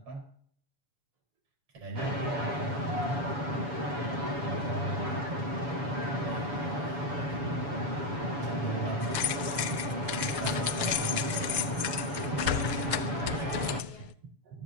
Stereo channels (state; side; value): late; left; 6.6 ms